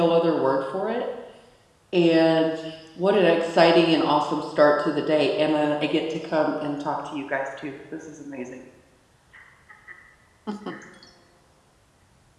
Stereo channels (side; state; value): both; identical; correlation 1.00